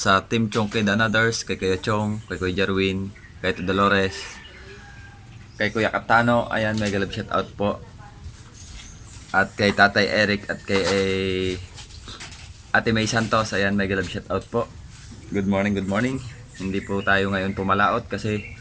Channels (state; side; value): identical; both; correlation 1.00